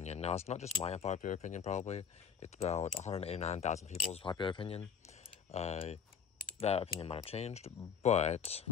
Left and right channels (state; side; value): quieter; right; 7.1 dB